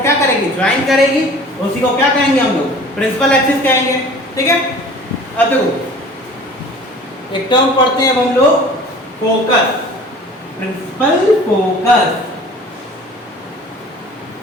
क्या करेगी? ज्वाइन करेगी, उसी को क्या कहेंगे हम लोग? प्रिंसिपल एक्सिस कहेंगे। ठीक है, अब देखो एक टर्म पढ़ते हैं अब हम लोग, फोकस। प्रिंसिपल फोकस,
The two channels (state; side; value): normal; both; correlation 0.45